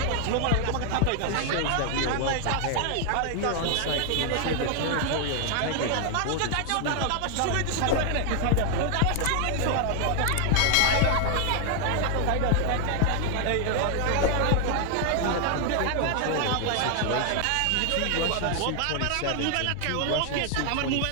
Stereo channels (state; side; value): different; both; correlation 0.00